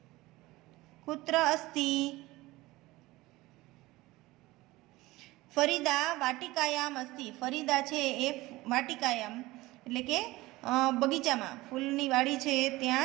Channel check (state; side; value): quieter; left; 19.4 dB